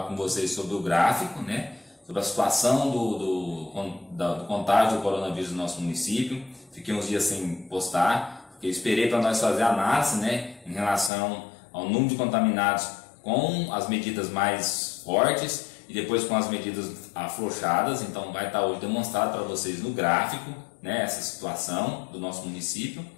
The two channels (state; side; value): drops out; right; at 11.1 s